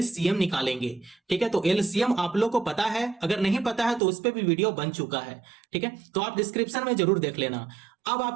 निकालेंगे। ठीक है, तो एलसीएम आप लोग को पता है, अगर नहीं पता है तो उस पर भी वीडियो बन चुका है। ठीक है, तो आप डिस्क्रिप्शन में जरूर देख लेना। अब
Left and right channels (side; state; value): left; drops out; at 4.0 s